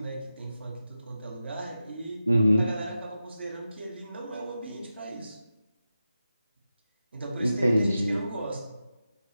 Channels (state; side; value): inverted; both; correlation -0.91